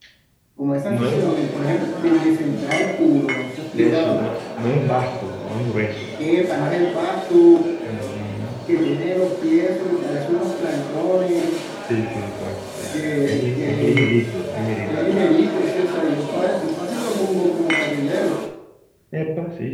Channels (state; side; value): identical; both; correlation 1.00